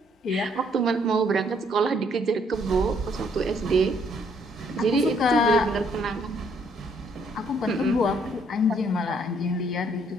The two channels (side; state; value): both; normal; correlation 0.67